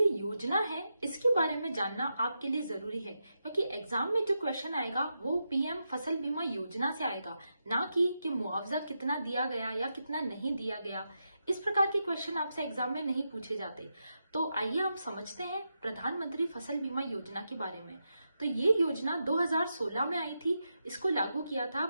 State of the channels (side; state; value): both; inverted; correlation -0.87